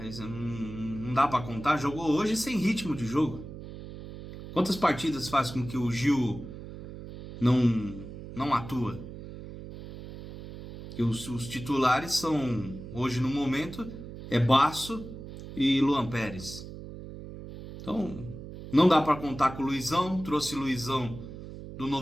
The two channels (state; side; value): noise; right; hum, 12 dB below the sound